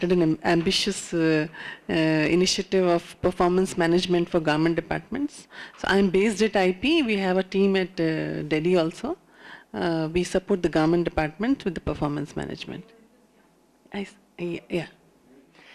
an ambitious initiative of performance management for government departments. So I'm based at IP. We have a team at Delhi also. We support the government department with the performance management. Yeah.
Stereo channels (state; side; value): identical; both; correlation 1.00